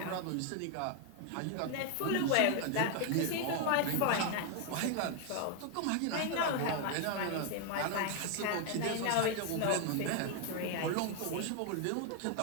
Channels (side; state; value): both; different; correlation 0.01